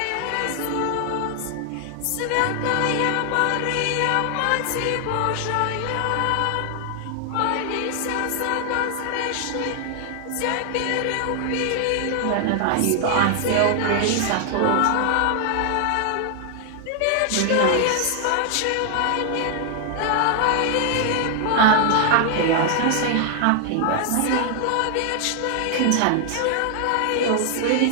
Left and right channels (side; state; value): both; different; correlation 0.00